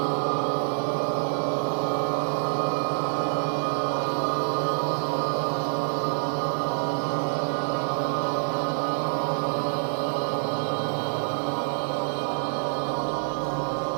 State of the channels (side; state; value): left; silent; digital silence